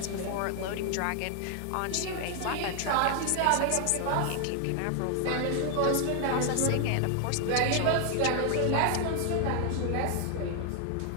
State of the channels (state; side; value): different; both; correlation 0.00